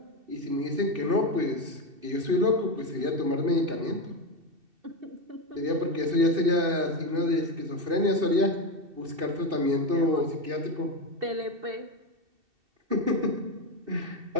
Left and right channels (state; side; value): late; left; 2.7 ms